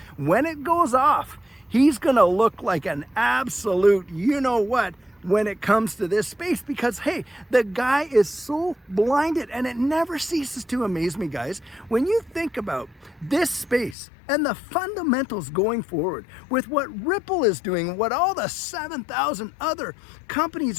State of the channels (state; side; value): drops out; right; at 14.0 s